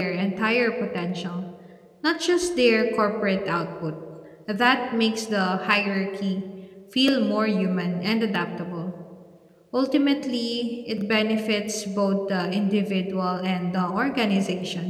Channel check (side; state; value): both; identical; correlation 1.00